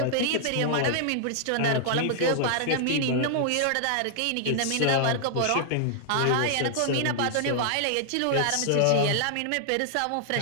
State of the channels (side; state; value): both; different; correlation -0.01